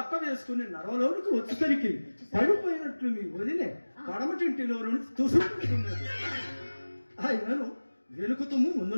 వేసుకుని నరవలోనికి వచ్చేసరికి పడిపోయినట్లు మీ వదిలే పడమటింటిలో నుంచి తుసుకుతున్నది. ఆయనను వెనుకుతుము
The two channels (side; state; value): both; inverted; correlation -1.00